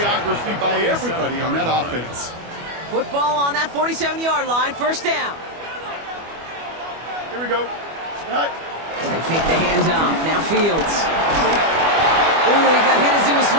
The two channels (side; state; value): left; late; 25 ms